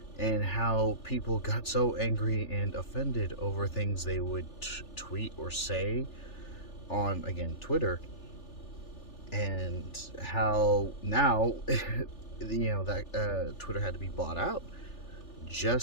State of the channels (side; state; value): right; late; 3.4 ms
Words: and how people got so angry and offended over things they would tweet or say on, again, Twitter, and how now that Twitter had to be bought out